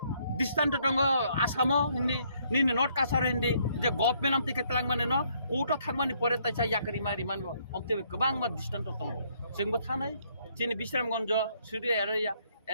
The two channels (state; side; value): inverted; both; correlation -0.68